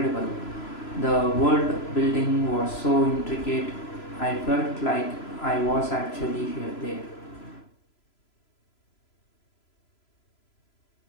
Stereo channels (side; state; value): right; late; 3.0 ms